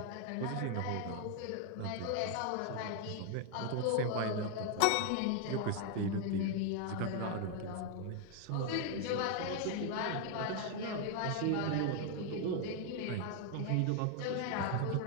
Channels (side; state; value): both; different; correlation 0.01